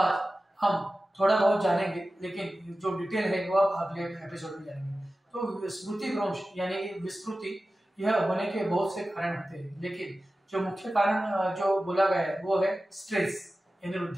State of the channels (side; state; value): both; normal; correlation 0.95